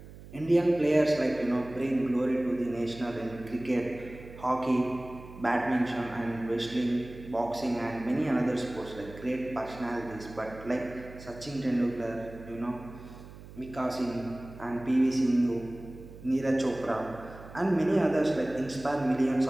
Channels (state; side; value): noise; right; hum, 16 dB below the sound